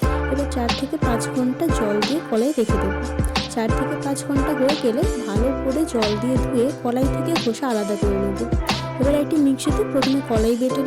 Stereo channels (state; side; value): identical; both; correlation 1.00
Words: এবার 4 থেকে 5 ঘন্টা জল দিয়ে কলাই রেখে দেবো। 4 থেকে 5 ঘন্টা হয়ে গেলে ভালো করে জল দিয়ে ধুয়ে কলাই থেকে খোসা আলাদা করে নেব। এবার একটি মিক্সিতে প্রথমে কলাই বেটে